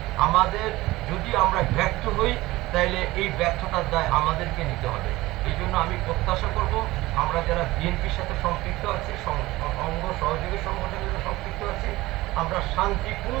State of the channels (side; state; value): left; quieter; 18.9 dB